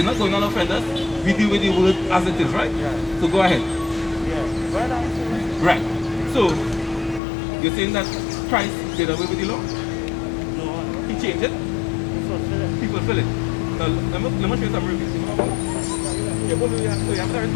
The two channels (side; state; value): right; drops out; at 7.2 s